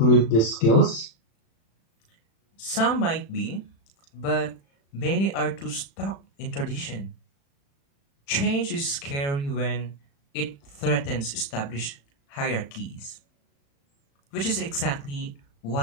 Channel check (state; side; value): late; right; 36 ms